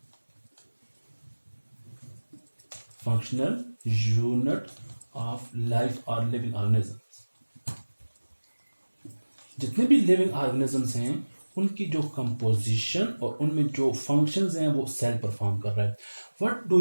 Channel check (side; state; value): both; inverted; correlation -1.00